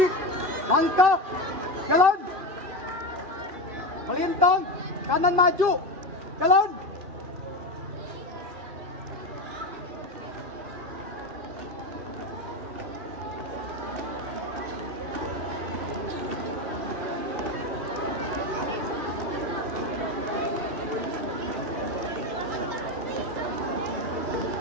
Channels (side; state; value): left; late; 2.5 ms